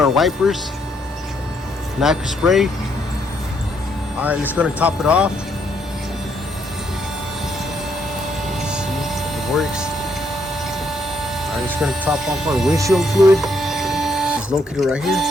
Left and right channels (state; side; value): normal; both; correlation 0.73